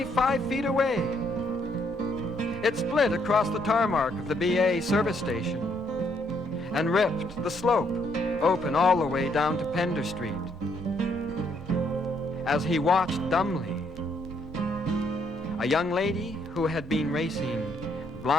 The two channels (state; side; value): normal; both; correlation 0.71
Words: 5 feet away. It split across the tarmac of the BA service station and ripped the slope open all the way down to Pender Street. As he watched dumbly, a young lady who had been racing